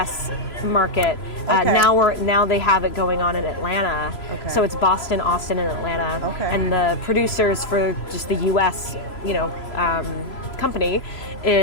market. Now they have it going on in Atlanta. So it's Boston, Austin, and Atlanta. And the producers for just the U.S. Company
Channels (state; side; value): late; right; 3.0 ms